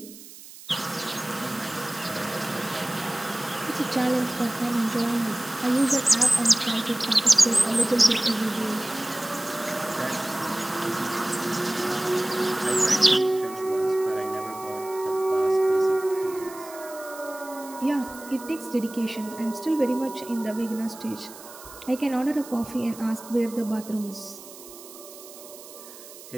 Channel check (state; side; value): noise; right; hiss, 17 dB below the sound